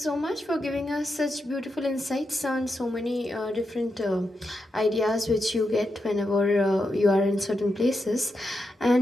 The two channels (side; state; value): both; normal; correlation 0.86